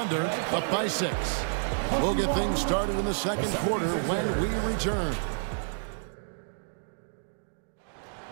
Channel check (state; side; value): silent; left; digital silence